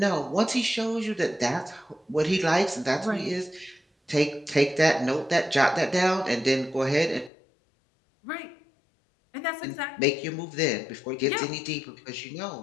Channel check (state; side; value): drops out; right; at 7.3 s